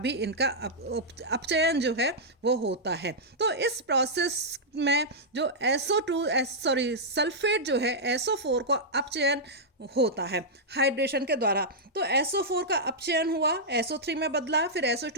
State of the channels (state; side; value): normal; both; correlation -0.08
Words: इनका अपचयन जो है वो होता है। तो इस प्रोसेस में जो सल्फेट जो है SO4 का अपचयन होता है हाइड्रेशन के द्वारा। तो SO4 का अपचयन हुआ, SO3 में बदला, फिर